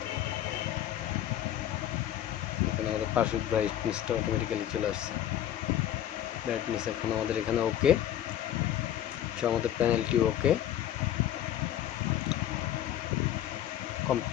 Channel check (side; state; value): right; quieter; 11.4 dB